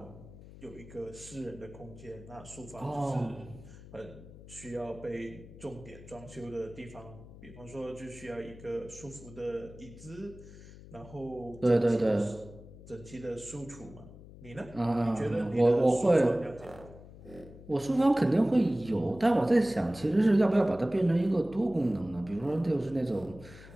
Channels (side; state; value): left; noise; hum, 18 dB below the sound